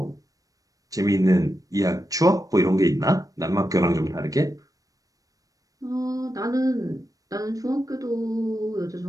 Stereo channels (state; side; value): late; left; 0.17 ms